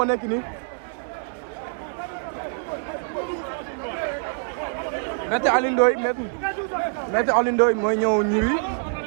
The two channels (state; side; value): silent; left; digital silence